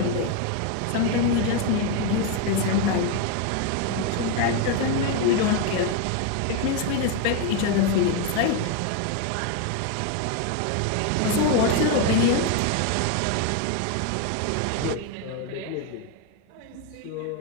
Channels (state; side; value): different; both; correlation 0.01